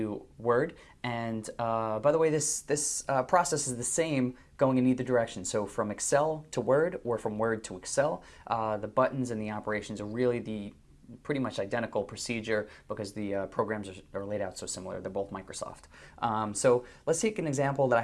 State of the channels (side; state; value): both; identical; correlation 1.00